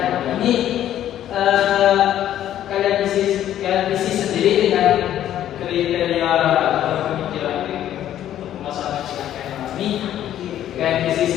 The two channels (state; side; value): quieter; right; 11.6 dB